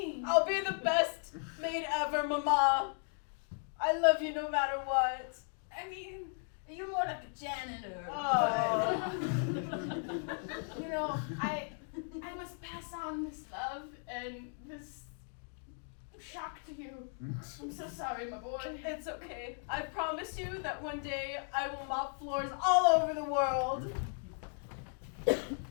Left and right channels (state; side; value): silent; right; 54 dB below the other